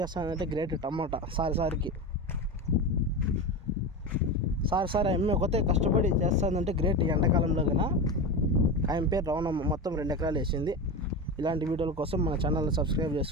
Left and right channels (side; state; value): both; normal; correlation 0.22